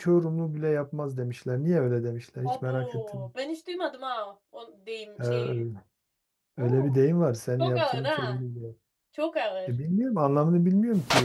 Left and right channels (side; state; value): both; identical; correlation 1.00